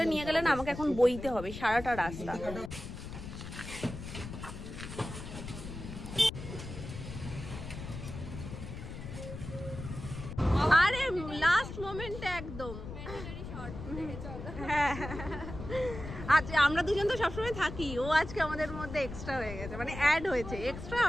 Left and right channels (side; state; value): left; noise; rumble, 9 dB below the sound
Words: নিয়ে গেলে না আমাকে এখন বইতে হবে সারাটা রাস্তা। আরে লাস্ট মোমেন্টে একদম। হ্যাঁ আচ্ছা, আমরা দুজন তো সবসময় থাকি, ও আজকে আমাদের মধ্যে এক্সট্রা হয়ে গেছে, মানে অ্যাড হয়েছে, এক্সট্রা